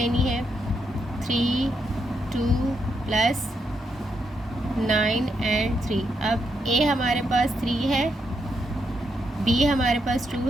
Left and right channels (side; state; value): both; normal; correlation 0.81